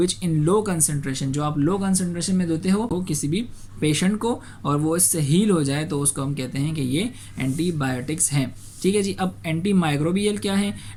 in low concentration, जो आप लो कंसंट्रेशन में देते हो किसी भी पेशेंट को और वो इससे हील हो जाए, तो उसको हम कहते हैं कि ये एंटीबायोटिक्स हैं। ठीक है जी। अब एंटी माइक्रोबियल क्या है?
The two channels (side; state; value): both; identical; correlation 1.00